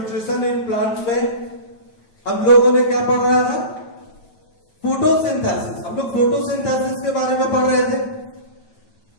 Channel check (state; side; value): late; right; 9.1 ms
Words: इन प्लांट्स में हम लोगों ने क्या पढ़ रहा था? फोटोसिंथेसिस। हम लोग फोटोसिंथेसिस के बारे में पढ़ रहे थे।